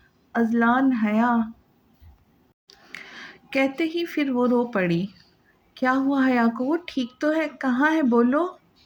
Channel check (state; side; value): identical; both; correlation 1.00